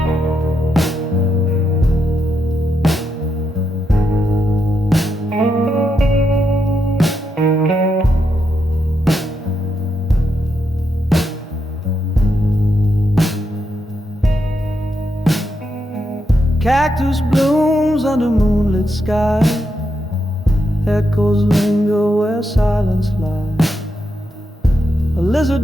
cactus blooms under moonlit sky. Echoes linger where silence lies. A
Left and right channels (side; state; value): both; normal; correlation 0.82